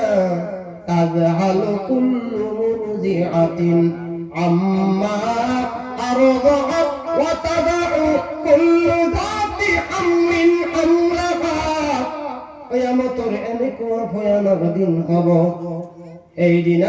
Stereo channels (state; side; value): identical; both; correlation 1.00